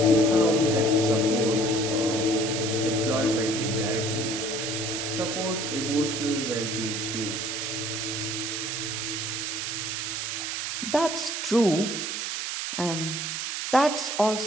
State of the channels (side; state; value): right; noise; hiss, 3 dB below the sound